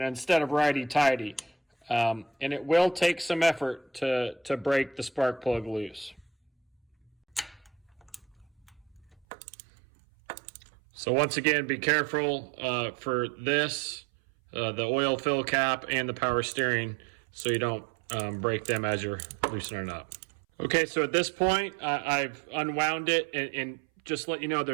of righty-tighty. And it will take some effort to break the spark plug loose. So once again, be careful for this, the oil fill cap and the power steering, so you don't break them as you're loosening up. Okay, so at this point, I've unwound it, and just let you know,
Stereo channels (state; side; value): drops out; left; at 9.2 s